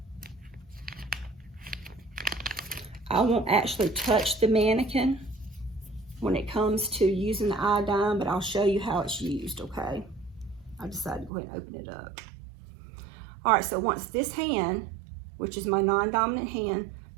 I won't actually touch the mannequin when it comes to using the iodine, but I'll show you how it's used, okay? I decided to go ahead and open it up. All right, so once this hand, which is my non-dominant hand,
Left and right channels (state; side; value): drops out; left; at 11.3 s